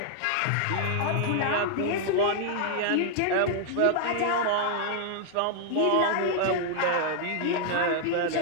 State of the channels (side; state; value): both; different; correlation -0.01